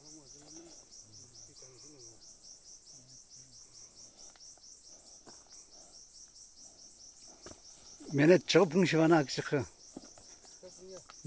Menet çıkıp bunu şivana akışıkı.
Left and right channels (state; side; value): identical; both; correlation 1.00